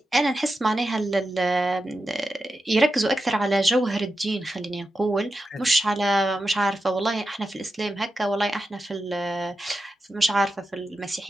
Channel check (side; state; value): both; normal; correlation 0.90